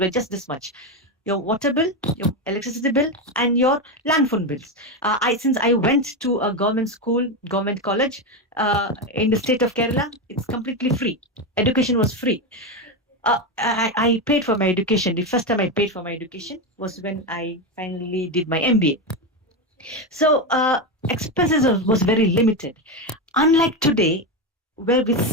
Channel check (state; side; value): normal; both; correlation 0.12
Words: just this much: your water bill, your electricity bill, and your land phone bills. Since I went to a government school, government college in the state of Kerala, it's completely free. Education was free. I paid for my education. The first time I paid for my education was when I finally did my MBA. So expenses was very limited. Unlike today, where we